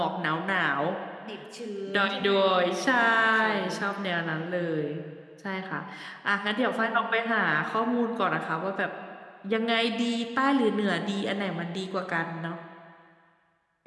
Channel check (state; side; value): identical; both; correlation 1.00